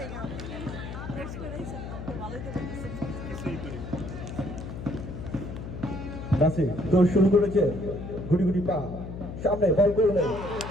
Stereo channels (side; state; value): left; noise; hum, 9 dB below the sound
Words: নাসির দৌড় শুরু করেছে, গুটি গুটি পা সামনে বল করলেন